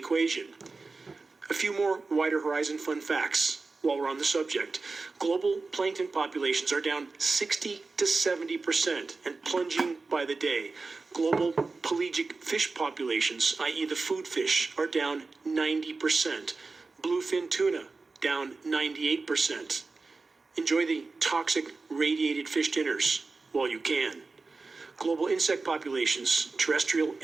A few more wider horizon fun facts while we're on the subject. Global plankton populations are down 60 to 70% and plunging by the day. Global pelagic fish populations, i.e. the food fish, are down 90%. Bluefin tuna, down 98%. Enjoy the toxic radiated fish dinners while you can. Global insect populations, terrestrial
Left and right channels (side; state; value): left; quieter; 3.9 dB